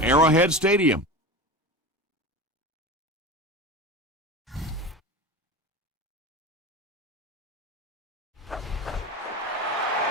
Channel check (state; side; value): normal; both; correlation 0.29